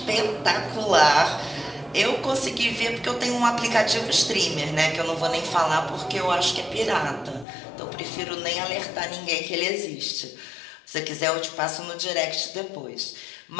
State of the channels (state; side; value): drops out; right; at 7.5 s